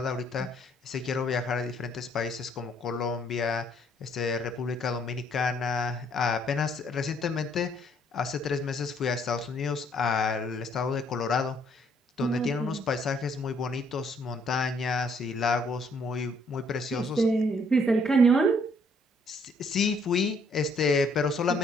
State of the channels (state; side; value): normal; both; correlation 0.66